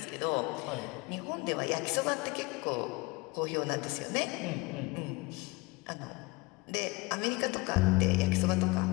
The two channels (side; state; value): right; quieter; 23.6 dB